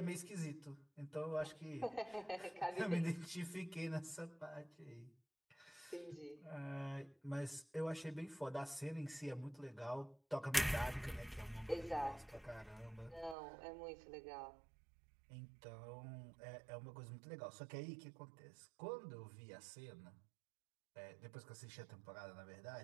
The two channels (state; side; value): drops out; left; at 13.4 s